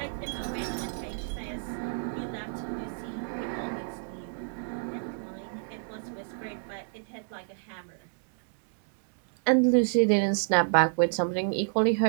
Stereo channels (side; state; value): left; silent; digital silence